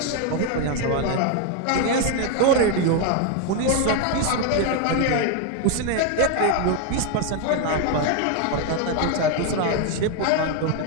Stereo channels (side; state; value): both; different; correlation 0.01